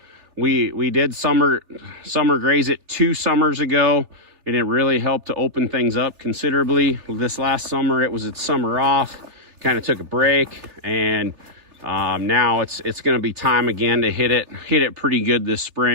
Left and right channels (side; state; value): left; late; 3.4 ms